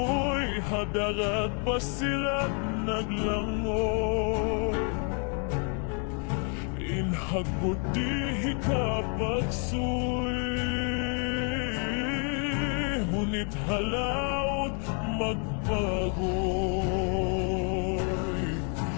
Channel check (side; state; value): right; quieter; 39.8 dB